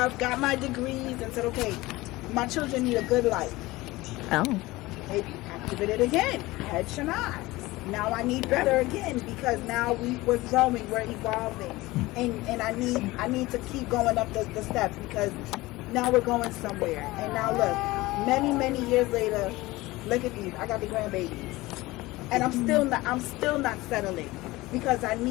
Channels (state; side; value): quieter; right; 19.8 dB